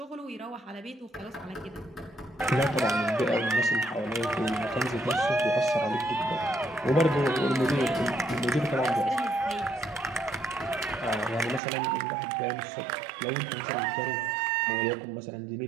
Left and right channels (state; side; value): drops out; left; at 11.6 s